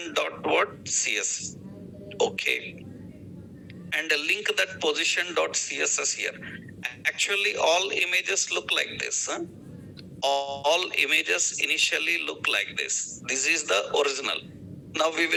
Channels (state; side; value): identical; both; correlation 1.00